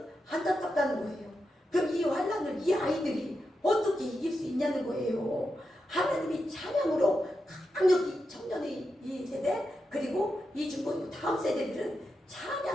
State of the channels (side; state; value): both; normal; correlation 0.87